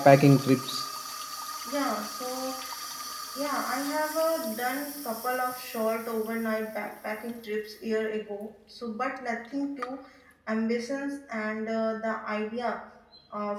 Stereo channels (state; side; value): identical; both; correlation 1.00